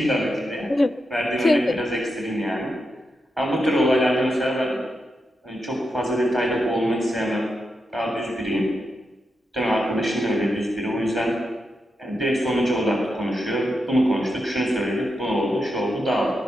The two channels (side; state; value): both; normal; correlation 0.86